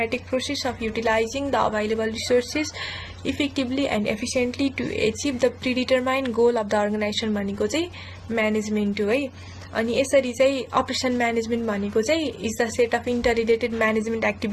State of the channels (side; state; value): both; identical; correlation 1.00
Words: process of utilizing the available resources effectively and efficiently to achieve the predetermined goal of the organization भनेको चाहिँ म्यानेजमेन्ट हो है। अनि यसरी चाहिँ अपरेसन म्यानेजमेन्ट भनेको चाहिँ is the set of interrelated management